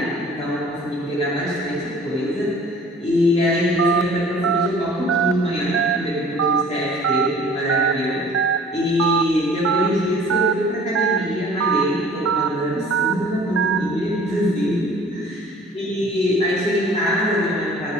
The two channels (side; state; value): both; normal; correlation 0.49